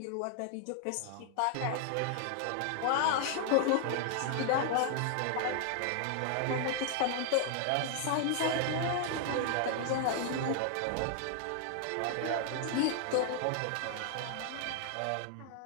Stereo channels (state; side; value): different; both; correlation 0.00